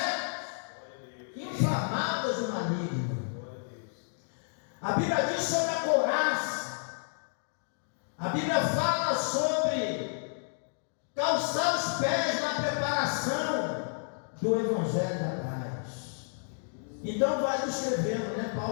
inflamadas do maligno. A Bíblia diz sobre a couraça. A Bíblia fala sobre calçar os pés na preparação do Evangelho da Paz. Então vai descrevendo, né?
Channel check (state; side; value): silent; right; digital silence